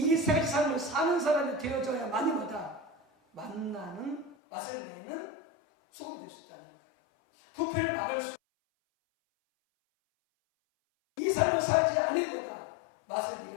세 가지 삶을 사는 사람이 되어져야만이 뭐다? 만나는 맛을 내는 소금이 될 수 있다는 거예요. 부패를 막을 수 이 삶을 살지 않은 거다. 맛을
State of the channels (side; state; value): right; drops out; at 4.4 s